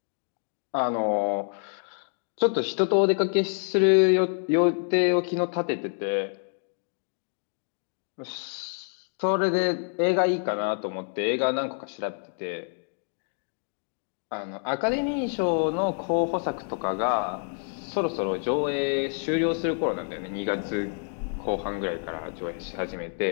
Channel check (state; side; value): silent; right; 57 dB below the other